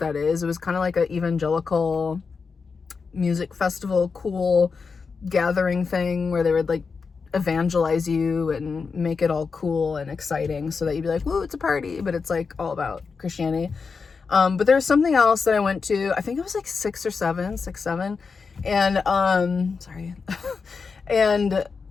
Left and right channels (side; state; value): right; quieter; 5.1 dB